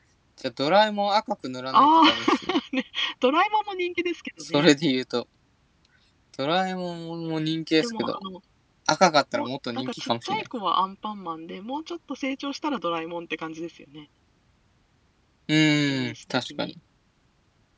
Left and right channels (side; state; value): both; identical; correlation 1.00